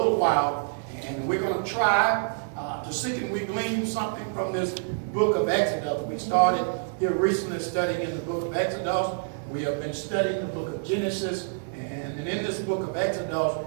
while, and we're going to try to seek and we glean something from this book of Exodus. We started here recently studying in the book of Exodus. We have been studying the book of Genesis, and in this book of Exodus,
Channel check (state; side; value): silent; left; 60 dB below the other